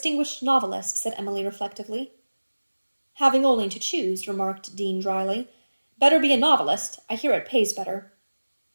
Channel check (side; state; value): both; inverted; correlation -1.00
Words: novelist, said Emily reflectively. Having only to choose, remarked Dean dryly. Better be a novelist. I hear it pays better.